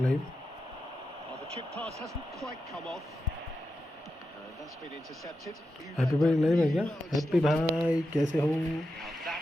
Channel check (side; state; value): both; normal; correlation 0.88